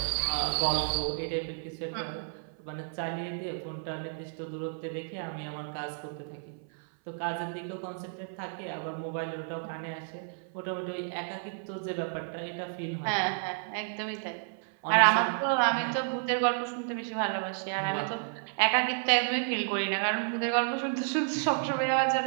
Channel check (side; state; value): left; silent; 57 dB below the other